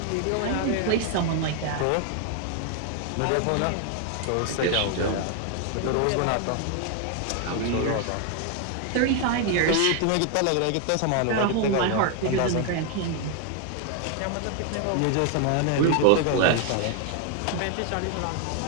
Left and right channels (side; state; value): both; different; correlation 0.00